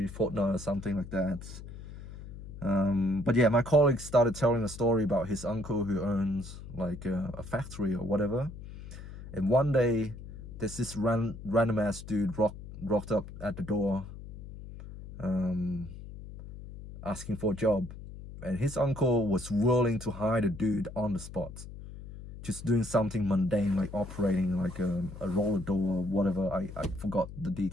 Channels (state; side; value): noise; left; hum, 13 dB below the sound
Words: fortnight or something like that. But yeah, my colleague started telling a story about his uncle who owns like a factory or whatever. And one day, there's this random ass dude rocked up at the door, asking for a job. And his uncle was willing to hire the dude on the spot, just doing something mundane like operating like a roller door or whatever. I forgot the